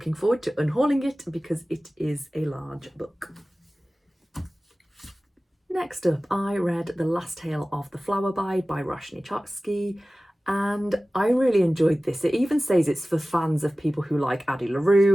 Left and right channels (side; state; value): both; normal; correlation 0.97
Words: forward to unhauling it because it is a large book. Next up, I read The Last Tale of the Flower Bride by Roshani, and I really enjoyed this. It even says it's for fans of people who like Addie